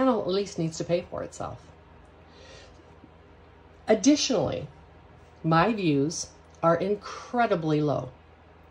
at least needs to pay for itself. Additionally, my views are incredibly low.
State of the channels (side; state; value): both; identical; correlation 1.00